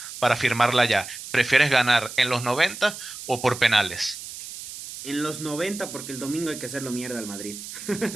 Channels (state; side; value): noise; right; hiss, 11 dB below the sound